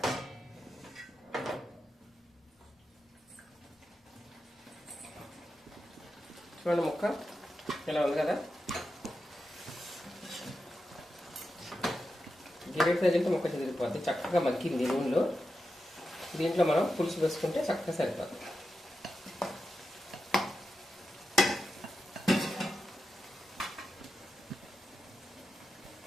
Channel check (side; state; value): both; normal; correlation 0.89